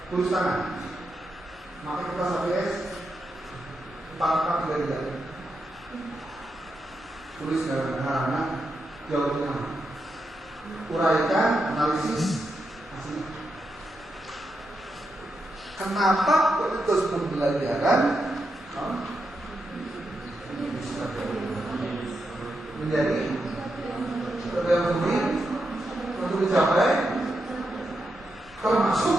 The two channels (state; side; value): normal; both; correlation 0.85